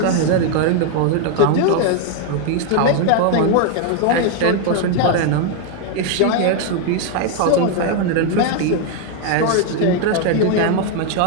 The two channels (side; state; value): both; different; correlation 0.00